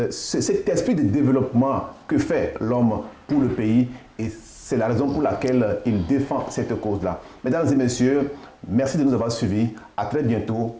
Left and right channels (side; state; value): both; identical; correlation 1.00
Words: cet esprit de développement que fait l'homme pour le pays. Et c'est la raison pour laquelle il défend cette cause-là. Mesdames et messieurs, merci de nous avoir suivis. À très bientôt